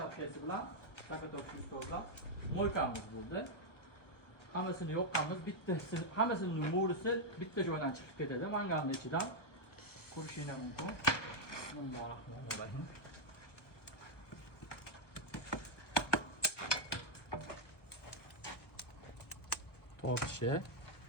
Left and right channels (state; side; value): late; right; 1.1 ms